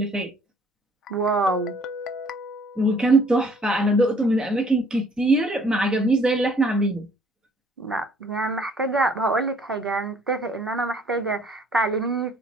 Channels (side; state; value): both; normal; correlation 0.59